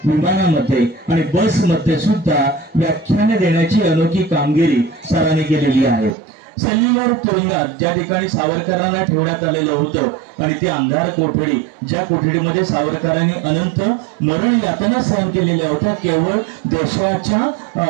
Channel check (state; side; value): drops out; left; at 6.2 s